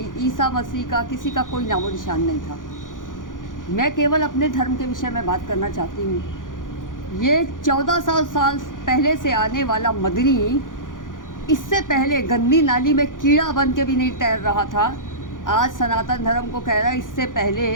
ईसा मसीह का किसी का कोई नामो निशान नहीं था। मैं केवल अपने धर्म के विषय में बात करना चाहती हूँ। ये 1400 साल पहले से आने वाला मदनी इससे पहले गंदी नाली में कीड़ा बन के भी नहीं तैर रहा था। आज सनातन धर्म को कह रहा है इससे पहले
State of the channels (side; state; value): right; late; 0.89 ms